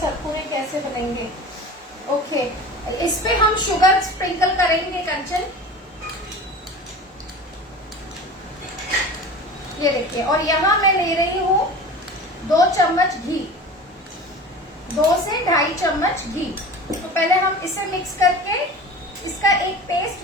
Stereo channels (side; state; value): both; normal; correlation 0.35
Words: कैसे बनेंगे? ओके, इस पे हम शुगर स्प्रिंकल करेंगे कंचन। ये देखिए, और यहाँ मैं ले रही हूँ 2 चम्मच घी, 2 से 2.5 चम्मच घी। तो पहले हम इसे मिक्स करके इसका एक